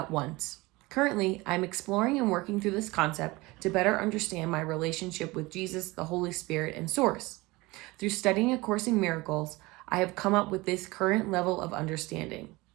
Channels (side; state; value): left; quieter; 22.1 dB